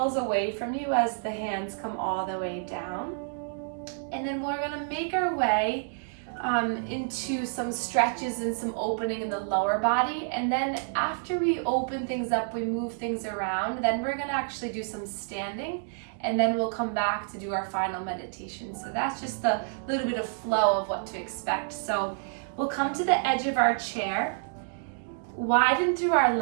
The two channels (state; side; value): silent; left; digital silence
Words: away from you as the hands come all the way down. And then we're gonna make our way into some stretches and some opening in the lower body. And then after we open things up, we move things around, then we're gonna actually do some standing, and then we'll come back to do our final meditation. So that's just a little bit of flow of what to expect. So we'll come to the edge of our chair, widen through our